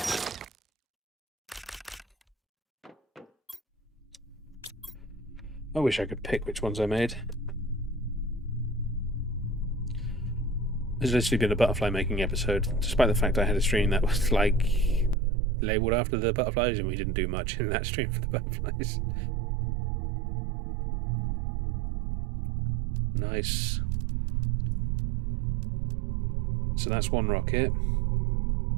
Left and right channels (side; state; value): left; drops out; at 15.2 s